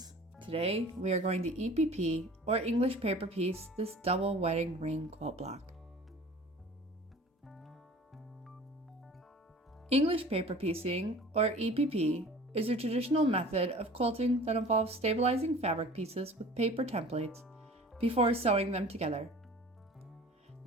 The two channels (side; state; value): both; normal; correlation 0.44